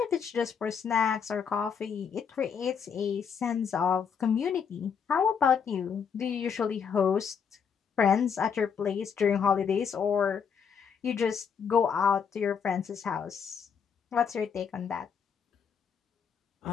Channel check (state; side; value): quieter; right; 6.8 dB